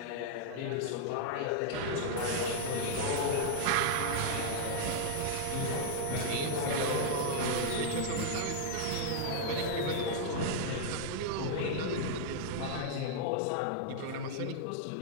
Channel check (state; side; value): different; both; correlation -0.01